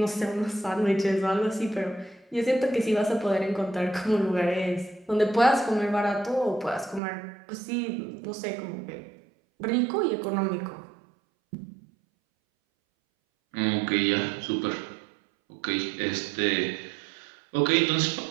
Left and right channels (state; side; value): drops out; left; at 7.0 s